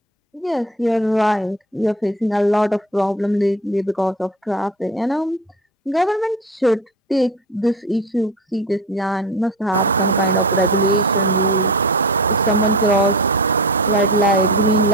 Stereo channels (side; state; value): both; normal; correlation 0.31